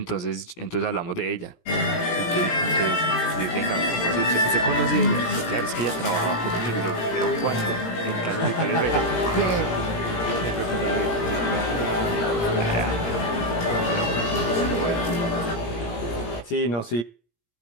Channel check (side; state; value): right; late; 17 ms